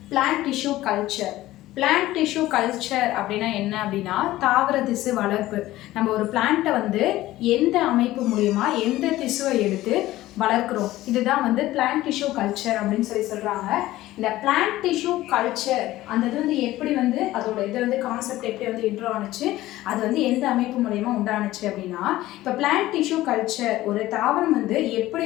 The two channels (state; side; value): quieter; right; 16.1 dB